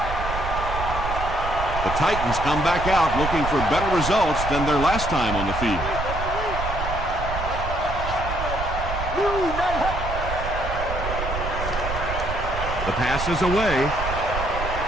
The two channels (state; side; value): noise; right; rumble, 5 dB below the sound